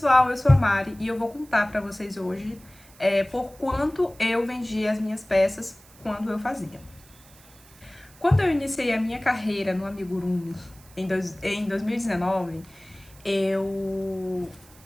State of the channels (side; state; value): right; noise; hiss, 25 dB below the sound